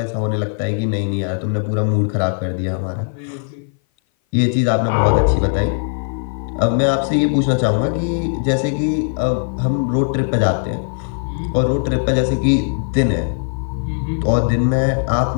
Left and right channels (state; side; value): silent; right; 58 dB below the other